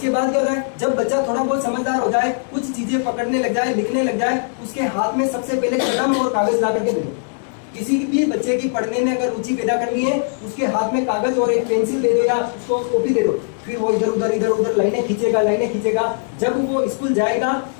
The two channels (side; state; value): right; silent; digital silence